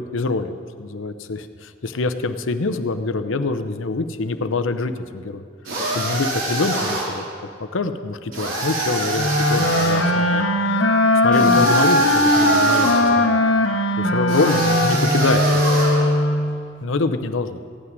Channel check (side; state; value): both; normal; correlation 0.14